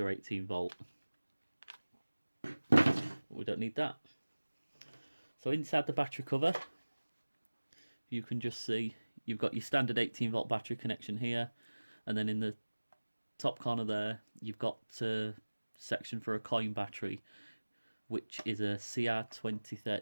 18V. We don't need that. So inside the battery cover, you can just see you've got your standard 18V battery connection here, and then in the top corner there you've got a section for a coin battery, which is a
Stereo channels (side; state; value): both; inverted; correlation -1.00